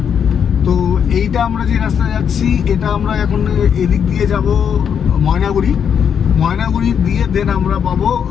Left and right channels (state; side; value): quieter; right; 7.7 dB